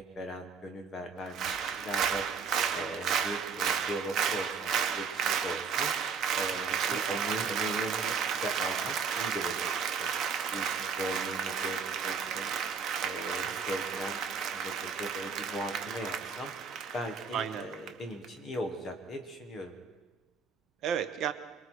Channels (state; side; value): quieter; left; 5.6 dB